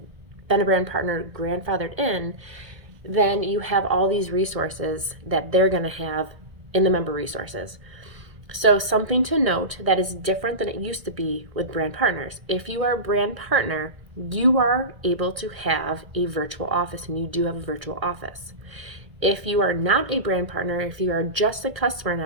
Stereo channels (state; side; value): late; left; 1.9 ms